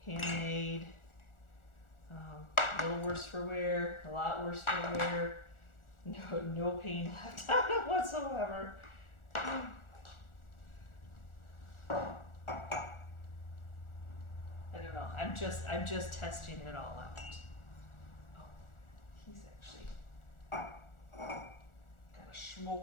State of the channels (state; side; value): late; right; 1.4 ms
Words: handmade, a little worse for wear, a lot worse for wear, no paint left on it whatsoever. I don't know, I'm just testing it all out. Oh, he's actually got a